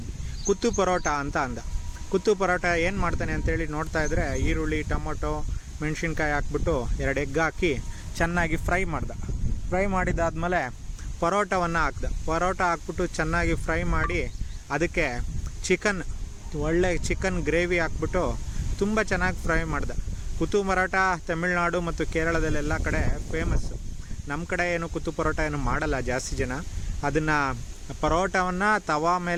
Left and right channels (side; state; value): both; identical; correlation 1.00